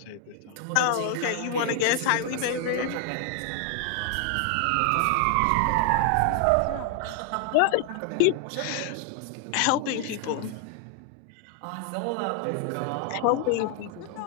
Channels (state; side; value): different; both; correlation 0.00